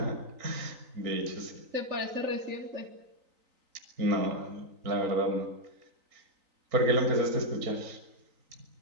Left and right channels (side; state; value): left; late; 3.9 ms